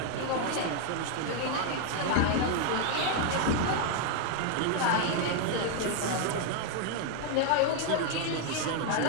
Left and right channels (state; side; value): different; both; correlation 0.01